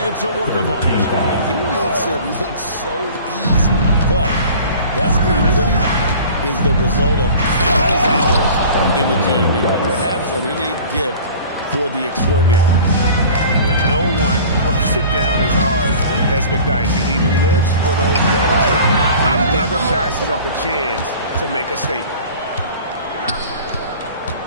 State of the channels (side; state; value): both; inverted; correlation -0.43